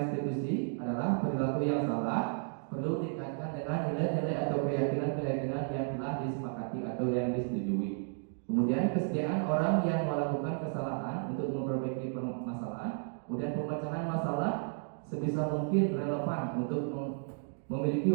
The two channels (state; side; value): silent; left; 56 dB below the other